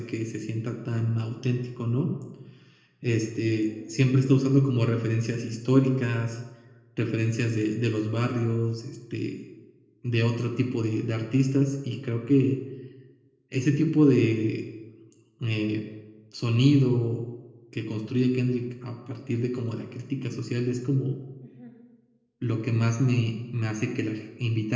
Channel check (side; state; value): both; identical; correlation 1.00